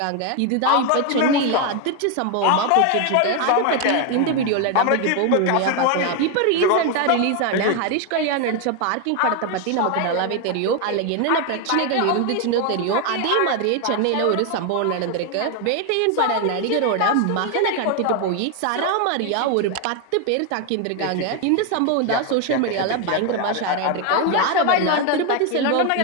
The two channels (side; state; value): both; different; correlation 0.01